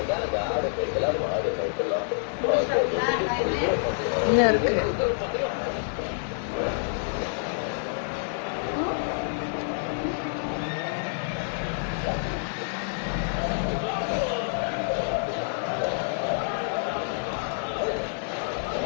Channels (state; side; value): silent; right; digital silence